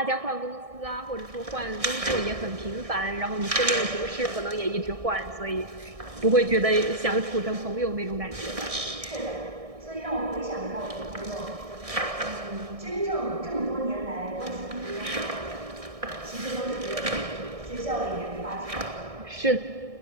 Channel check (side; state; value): left; late; 1.6 ms